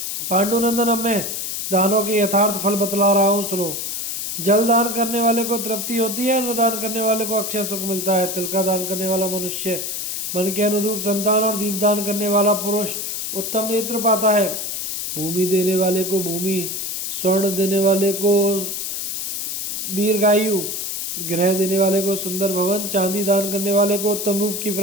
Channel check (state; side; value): noise; left; hiss, 3 dB below the sound